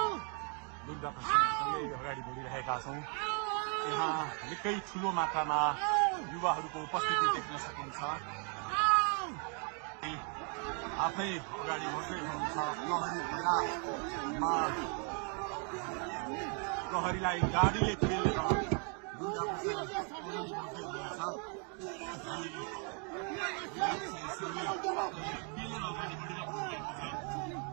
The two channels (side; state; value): left; quieter; 39.4 dB